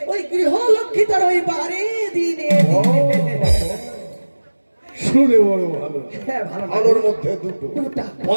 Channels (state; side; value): inverted; both; correlation -1.00